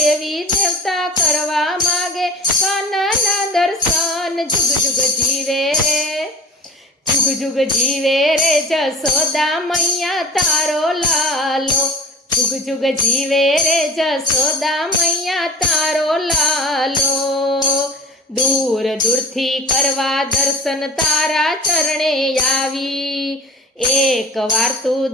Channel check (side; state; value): both; normal; correlation 0.37